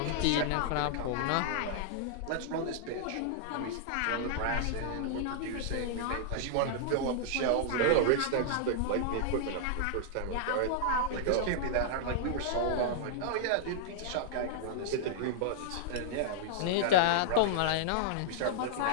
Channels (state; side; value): different; both; correlation -0.01